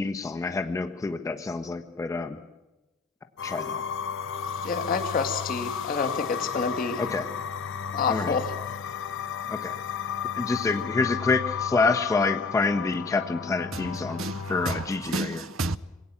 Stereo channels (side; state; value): right; quieter; 4.0 dB